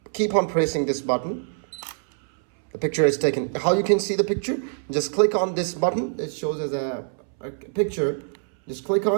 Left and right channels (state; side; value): silent; left; 62 dB below the other